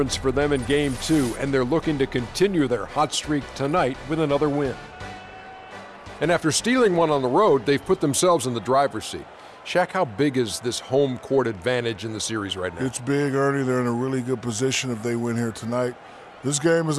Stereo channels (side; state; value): both; identical; correlation 1.00